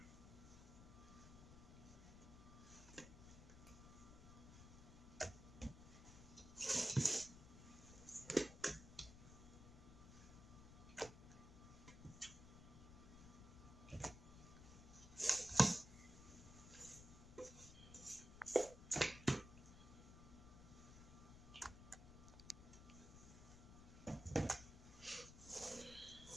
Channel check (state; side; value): noise; left; rumble, 14 dB below the sound